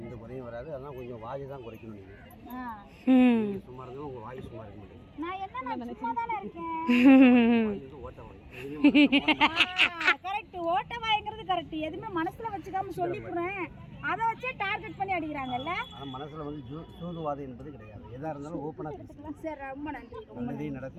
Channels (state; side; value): identical; both; correlation 1.00